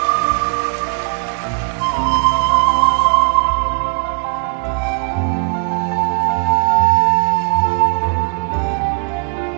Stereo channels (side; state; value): left; quieter; 38.2 dB